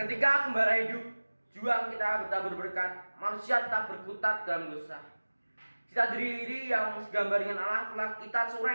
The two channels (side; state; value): both; inverted; correlation -1.00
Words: gembala hidup, juang kita bertabur berkat, manusia tetap berkutat dalam dosa. Cita diri yang segambar dengan Allah telah kita